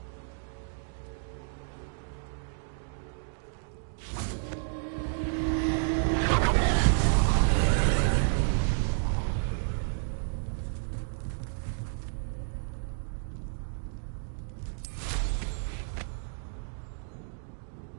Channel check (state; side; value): silent; left; digital silence